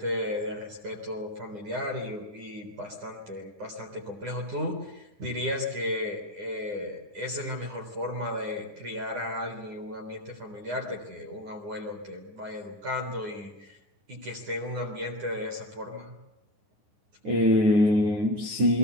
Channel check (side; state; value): left; late; 9.8 ms